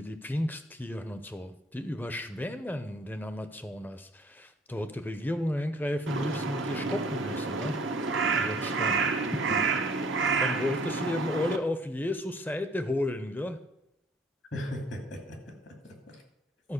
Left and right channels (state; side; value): normal; both; correlation 0.58